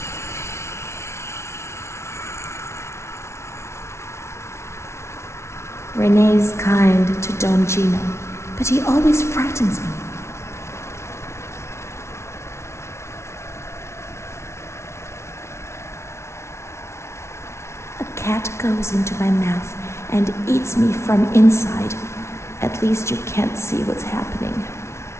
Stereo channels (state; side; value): late; right; 0.13 ms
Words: Renée's kind to Don Gino, but he always frightens me. A cat goes into my mouth and eats me from inside. At least you can't see what's happening.